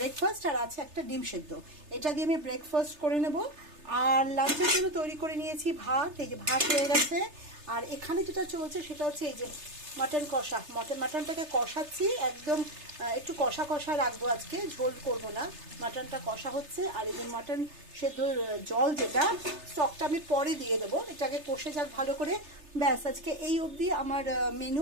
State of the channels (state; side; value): late; left; 3.3 ms